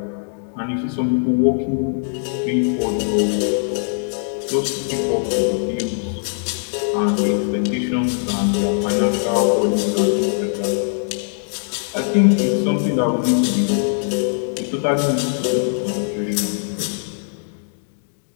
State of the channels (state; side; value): silent; right; digital silence